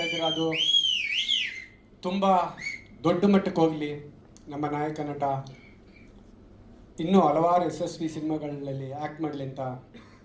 ಇದ್ದೀರಾ ಅದು ತುಂಬ ದೊಡ್ಡ ಮಟ್ಟಕ್ಕೆ ಹೋಗಲಿ. ನಮ್ಮ ನಾಯಕ ನಟ ಇನ್ನೂ ಹಲವಾರು ಯಶಸ್ವಿ ಸಿನಿಮಾಗಳಲ್ಲಿ ಆ್ಯಕ್ಟ್ ಮಾಡಲಿ ಅಂತ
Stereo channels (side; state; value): both; identical; correlation 1.00